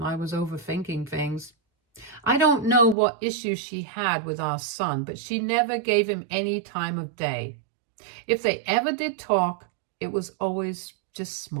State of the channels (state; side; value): drops out; left; at 3.0 s